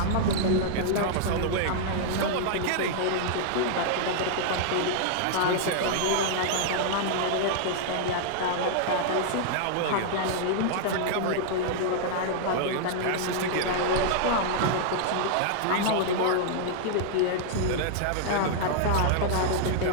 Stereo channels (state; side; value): different; both; correlation -0.01